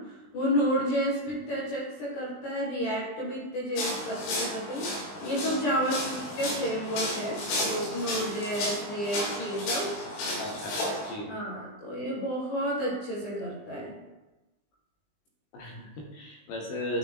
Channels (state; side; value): late; right; 20 ms